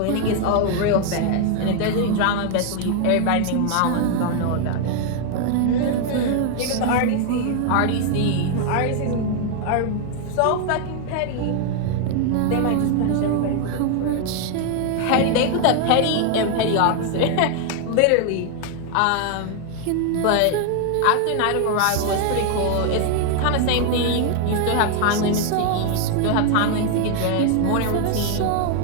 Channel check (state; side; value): different; both; correlation 0.00